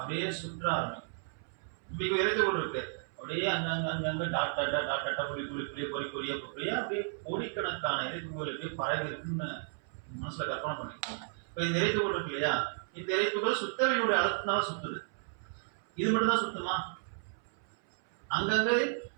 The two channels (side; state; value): left; silent; 55 dB below the other